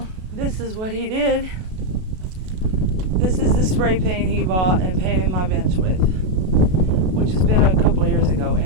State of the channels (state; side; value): late; left; 32 ms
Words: this is what he did. This is the spray paint he bought and painted my bench with, which has been a couple of years ago.